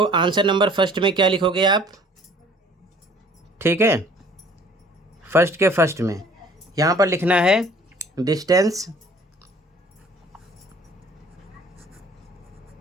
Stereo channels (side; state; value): both; normal; correlation 0.53